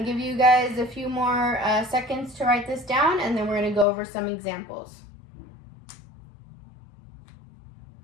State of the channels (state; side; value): drops out; right; at 3.9 s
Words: to give you guys a few more seconds to write this down, and then we're going to go over some examples.